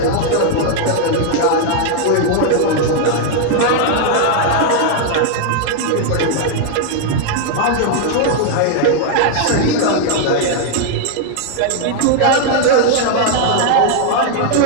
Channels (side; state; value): both; different; correlation 0.00